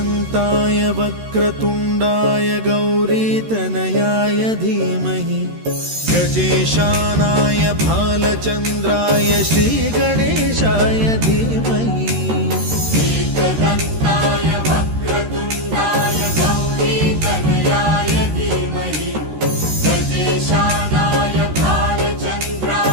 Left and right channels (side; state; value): left; late; 13 ms